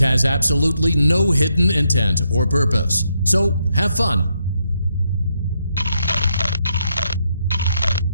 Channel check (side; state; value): both; inverted; correlation -0.79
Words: absolutely no hidden intent or purpose. So, have fun!